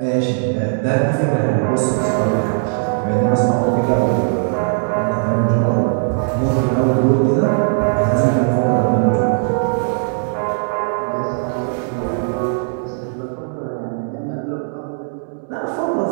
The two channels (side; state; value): left; silent; digital silence